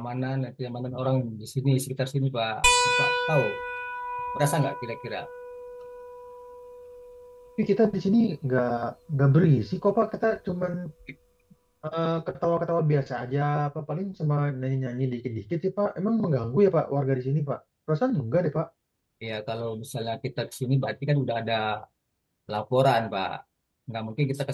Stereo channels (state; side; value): identical; both; correlation 1.00